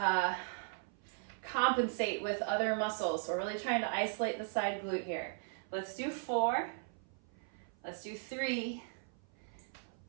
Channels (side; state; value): left; silent; 53 dB below the other